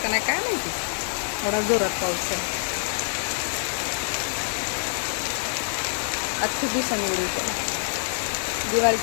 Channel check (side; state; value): right; silent; digital silence